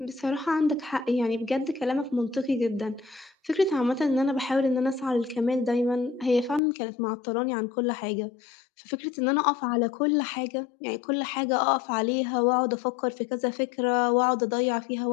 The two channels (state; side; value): drops out; right; at 6.6 s